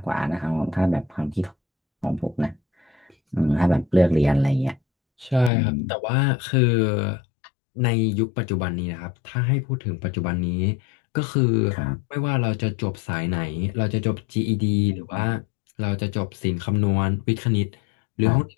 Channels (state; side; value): drops out; right; at 5.5 s